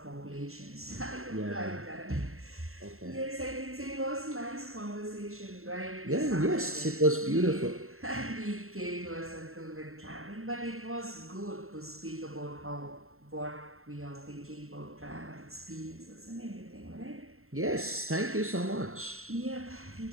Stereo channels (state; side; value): late; left; 0.62 ms